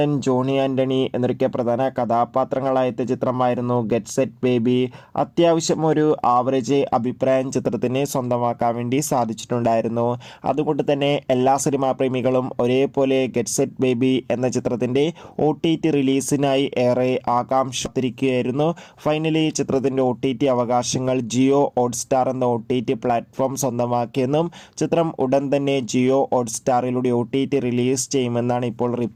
ജോണി ആൻ്റണി എന്നൊക്കെ പ്രധാന കഥാപാത്രങ്ങളായ ചിത്രമായിരുന്നു ഗെറ്റ് സെറ്റ് ബേബി. അത്യാവശ്യം ഒരു ആവറേജ് അഭിപ്രായം ചിത്രത്തിന് സ്വന്തമാക്കാൻ വേണ്ടി സാധിച്ചിട്ടുണ്ടായിരുന്നു. അതുകൊണ്ട് തന്നെ എല്ലാ സിനിമാ പ്രേമികളും ഒരേപോലെ ഗെറ്റ് സെറ്റ് ബേബി എന്ന ചിത്രത്തിൻ്റെ OTT റിലീസിനായി ഏറെ ആകാംക്ഷത്തിരിക്കുകയായിരുന്നു. ഫൈനലി ചിത്രത്തിൻ്റെ OTT അവകാശങ്ങൾ ജിയോ ഹോട്ട്സ്റ്റാർ എന്ന OTT പ്ലാറ്റ്ഫോം സ്വന്തമാക്കിയെന്നും ചിത്രം ഉടൻ തന്നെ ജിയോ ഹോട്ട്സ്റ്റാറിലൂടെ OTT റിലീസ് ചെയ്യുമെന്നാണ് ഇപ്പോൾ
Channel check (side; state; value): both; identical; correlation 1.00